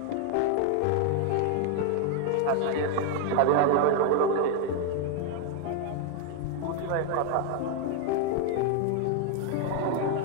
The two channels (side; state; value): both; different; correlation 0.01